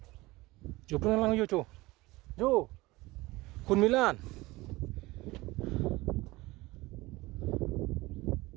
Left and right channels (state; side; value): quieter; left; 20.6 dB